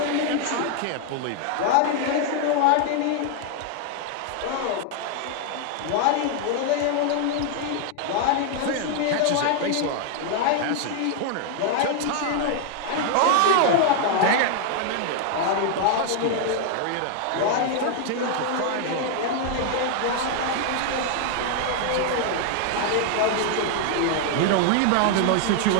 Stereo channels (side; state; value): both; different; correlation 0.00